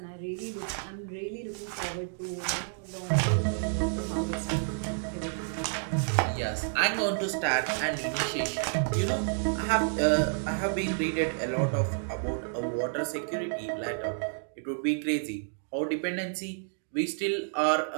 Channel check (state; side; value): silent; left; digital silence